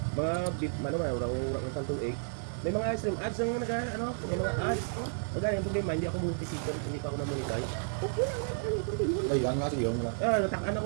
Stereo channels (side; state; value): left; silent; digital silence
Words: Mga beef, ano man, urang santong egg. May mga stream ads ang may mga ads. Magana yung problema, hindi ako monetization, hindi pa ako na-monetize. okay lang yan. Ano continue. Ayun nga siya wala. Natakaan ako,